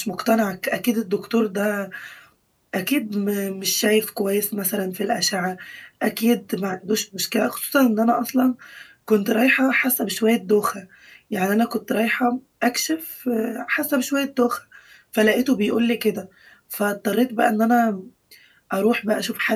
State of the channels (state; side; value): identical; both; correlation 1.00